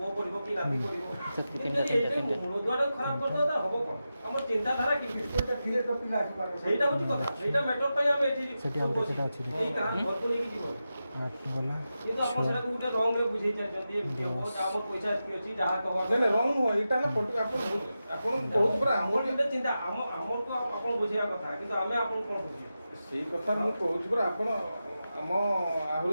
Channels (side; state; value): both; inverted; correlation -0.91